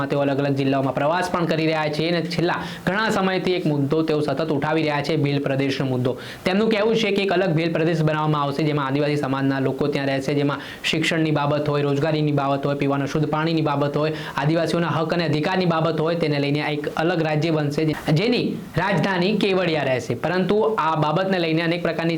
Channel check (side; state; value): both; identical; correlation 1.00